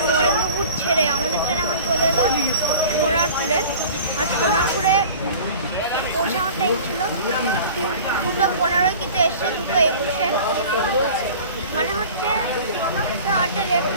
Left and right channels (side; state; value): both; inverted; correlation -0.42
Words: নরেন্দ্রপুর ছেড়ে আমাদের ট্রেন এখন চলে এলো সোনারপুরে। আর সোনারপুরে পৌঁছানোর টাইম ছিল 2:15, কিন্তু এসছে 2:21, মানে হচ্ছে অনেকটা লেট